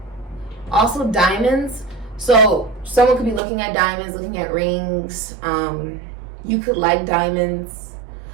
Also diamonds. So someone could be looking at diamonds, looking at rings. You could like diamonds.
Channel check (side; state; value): left; drops out; at 3.4 s